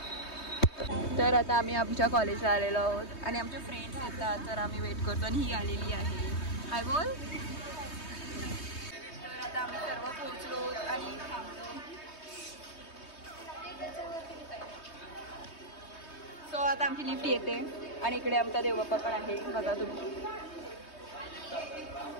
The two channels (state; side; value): late; right; 3.2 ms